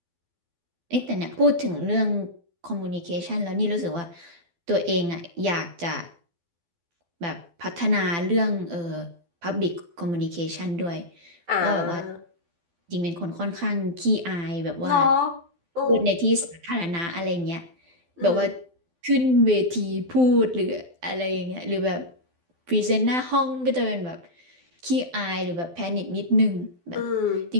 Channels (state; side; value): late; left; 12 ms